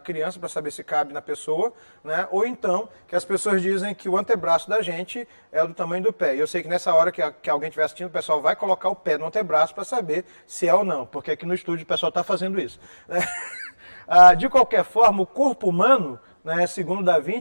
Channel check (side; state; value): both; inverted; correlation -1.00